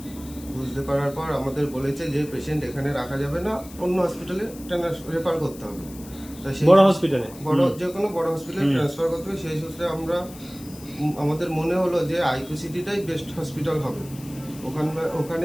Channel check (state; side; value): noise; left; hiss, 19 dB below the sound